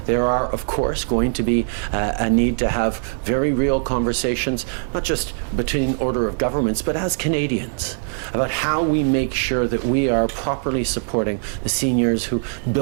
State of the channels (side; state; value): left; silent; 64 dB below the other